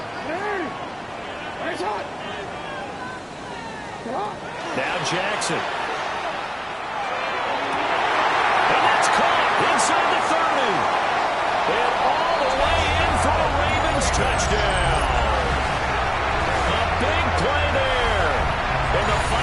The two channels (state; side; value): identical; both; correlation 1.00